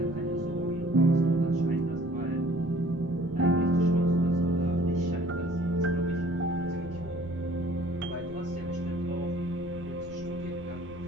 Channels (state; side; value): noise; left; rumble, 16 dB below the sound